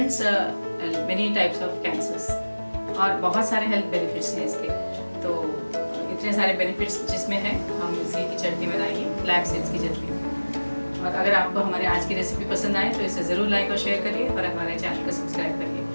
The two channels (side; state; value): both; inverted; correlation -1.00